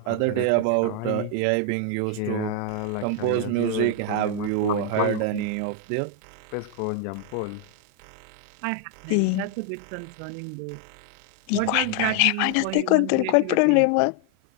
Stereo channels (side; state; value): both; different; correlation 0.00